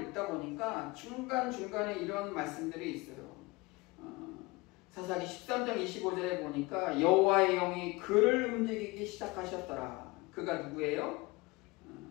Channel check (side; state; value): right; quieter; 23.4 dB